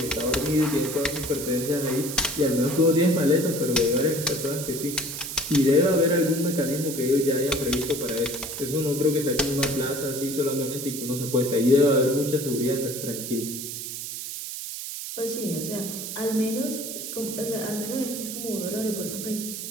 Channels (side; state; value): right; noise; hiss, 7 dB below the sound